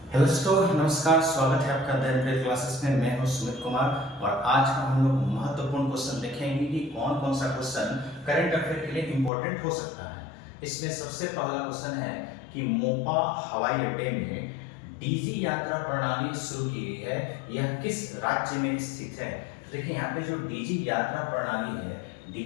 हेलो दोस्तों, नमस्कार। स्वागत है आपका द एवरेज क्लासेस में। मैं हूं सुमित कुमार और आज हम लोग महत्वपूर्ण क्वेश्चन देखेंगे कि कौन कौन सा क्वेश्चन करंट अफेयर के लिए इम्पोर्टेंट हो सकता है। इसमें सबसे पहला क्वेश्चन है कि मोपा हवाई अड्डे में डीजी यात्रा प्रणाली शुरू की गई है, यह किस राज्य में स्थित है। तो देखिए यहाँ पे जो डीजी यात्रा प्रणाली है,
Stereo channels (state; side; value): drops out; right; at 9.3 s